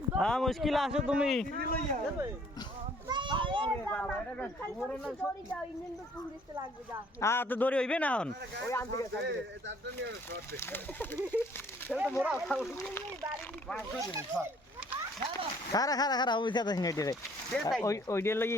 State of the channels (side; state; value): both; normal; correlation 0.59